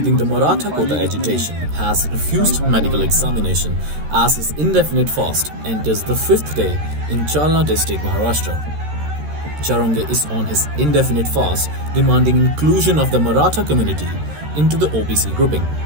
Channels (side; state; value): left; late; 13 ms